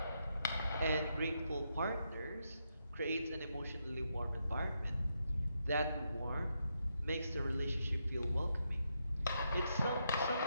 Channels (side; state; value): both; inverted; correlation -0.81